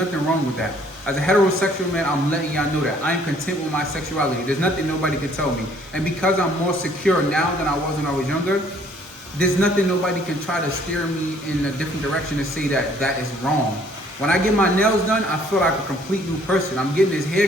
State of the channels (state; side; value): normal; both; correlation 0.60